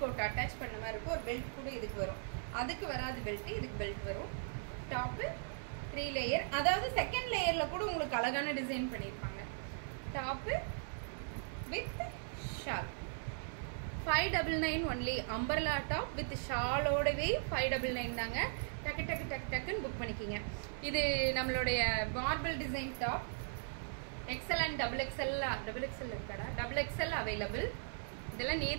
கோட் அட்டாச் பண்ண மாதிரி இருக்கும். ஒரு பெல்ட் கூட இதுக்கு வரும். அதுக்கு வராது பெல்ட், இதுக்கு பெல்ட் வரும். டாப் 3 லேயர், அதாவது செகண்ட் லேயர்ல கூட உங்களுக்கு அழகான டிசைன் பண்ணிருப்பாங்க. Top with shawl 599 only. அம்பர்லா டாப் வித் ஷாலோடவே 599 தாங்க. டக்கு டக்கு டக்கு டக்குன்னு புக் பண்ணிக்கிங்க. இது நம்மளுடைய marble design top. XL and double XL இருக்காடா, டபுள் எக்ஸ்எல் அவைலபிள். இதெல்லாம்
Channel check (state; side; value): silent; left; digital silence